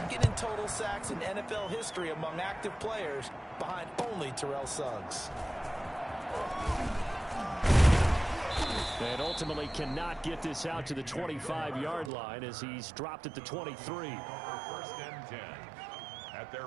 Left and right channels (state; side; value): drops out; left; at 12.1 s